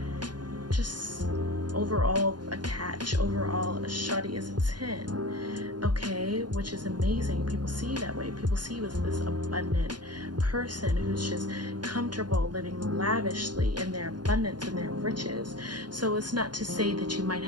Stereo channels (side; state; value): left; late; 0.70 ms